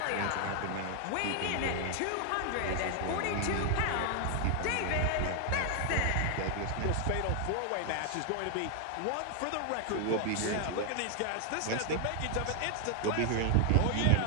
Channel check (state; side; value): different; both; correlation 0.00